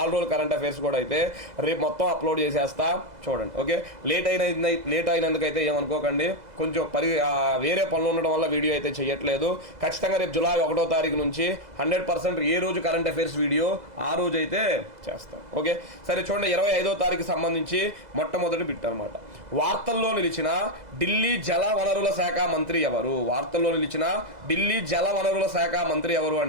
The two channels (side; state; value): left; late; 2.0 ms